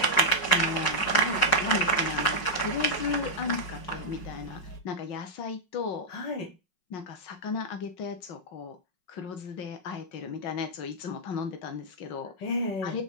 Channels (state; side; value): late; right; 5.5 ms